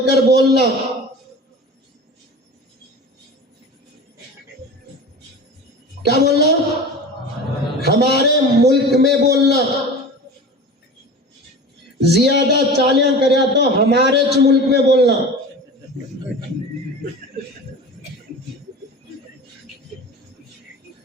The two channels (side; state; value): both; normal; correlation 0.35